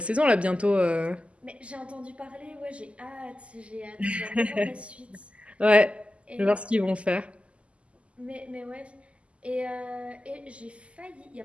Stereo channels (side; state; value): left; late; 0.058 ms